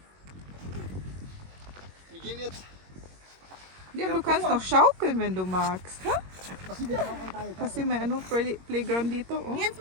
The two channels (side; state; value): left; late; 21 ms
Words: Wir gehen jetzt. Liam, du kannst noch schaukeln, wenn du magst. Ha? Kasi dito ako tayo. Kasi may ano, Playground dito. Oh. Jetzt